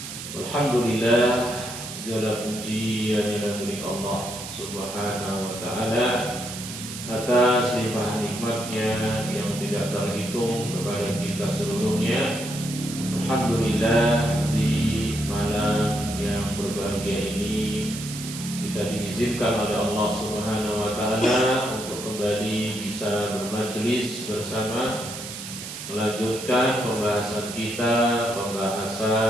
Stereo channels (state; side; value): noise; right; hiss, 10 dB below the sound